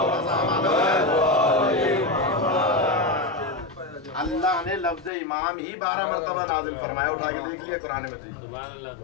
अल्लाह ने लफ्ज़ इमाम ही 12 मरतबा नाजिल फरमाया। उठा के देख लिया कुरान मजीद।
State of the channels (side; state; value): right; drops out; at 5.1 s